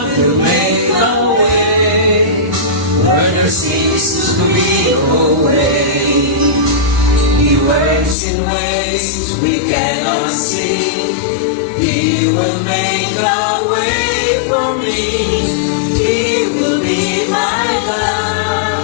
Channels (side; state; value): right; drops out; at 8.2 s